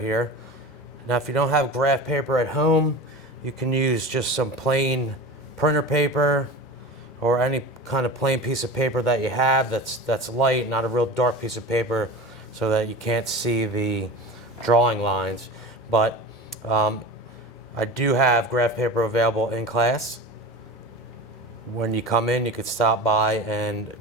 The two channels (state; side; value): normal; both; correlation 0.32